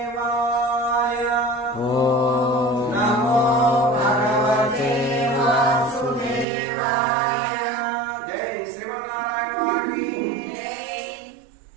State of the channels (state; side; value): drops out; left; at 6.5 s